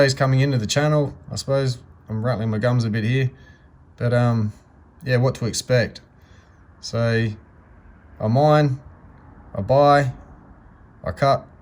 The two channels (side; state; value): both; identical; correlation 1.00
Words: coming into the channel, I suppose I'm rattling my gums a bit here, but yeah, what to expect. So I mine, I buy, I cut,